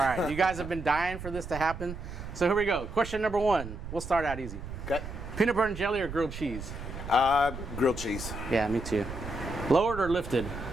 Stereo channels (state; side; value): noise; right; rumble, 9 dB below the sound